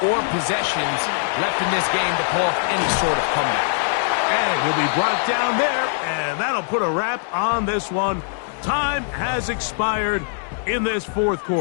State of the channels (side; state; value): right; silent; digital silence